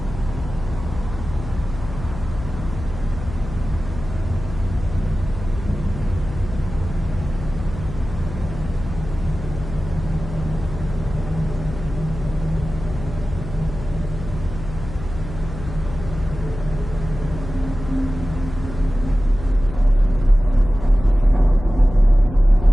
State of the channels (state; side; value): noise; left; hum, 10 dB below the sound